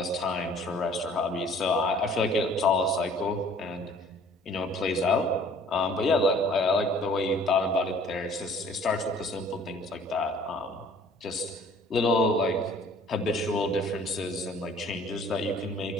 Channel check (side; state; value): both; normal; correlation 0.54